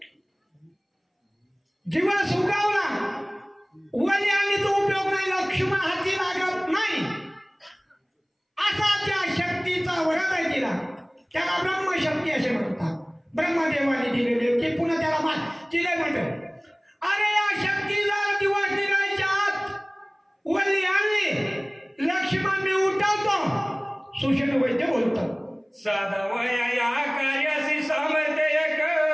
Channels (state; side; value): identical; both; correlation 1.00